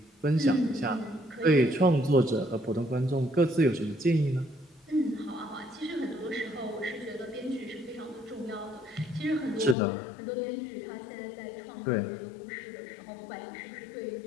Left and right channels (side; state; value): right; drops out; at 9.8 s